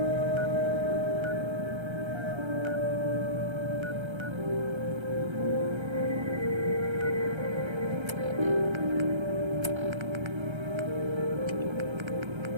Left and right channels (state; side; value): late; left; 1.3 ms